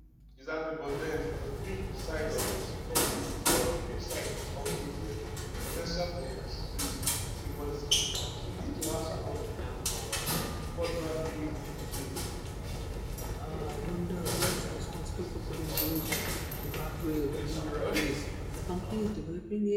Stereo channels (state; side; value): identical; both; correlation 1.00